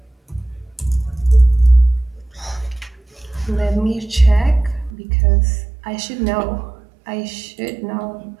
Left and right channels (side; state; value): left; drops out; at 4.9 s